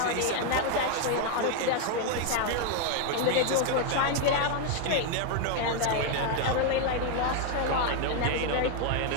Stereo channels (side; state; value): both; different; correlation 0.01